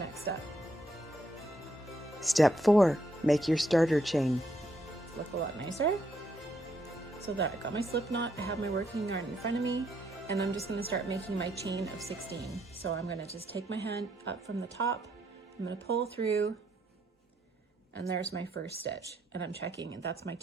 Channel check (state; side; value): normal; both; correlation 0.74